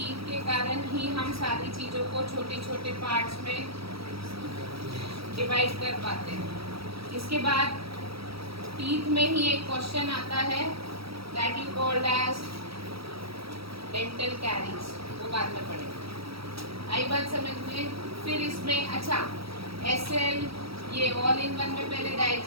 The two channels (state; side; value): late; left; 0.76 ms